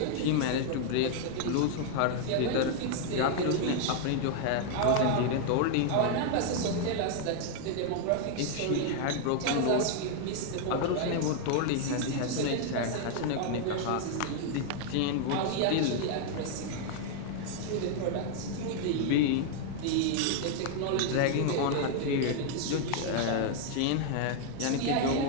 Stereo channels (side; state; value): both; different; correlation 0.00